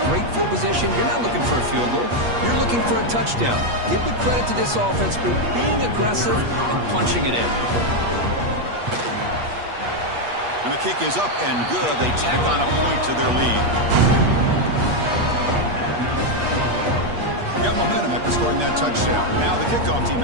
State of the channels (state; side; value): late; left; 8.4 ms